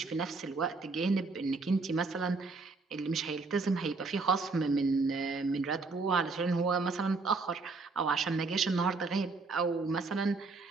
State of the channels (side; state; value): left; quieter; 4.0 dB